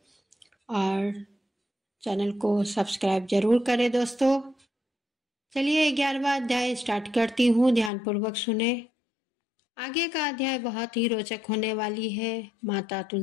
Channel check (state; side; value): drops out; right; at 7.9 s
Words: और चैनल को सब्सक्राइब जरूर करें दोस्तों। चलिए 11वां अध्याय स्टार्ट करती हूँ, ध्यानपूर्वक सुने। आगे का अध्याय बहुत ही रोचक होने वाली है। माता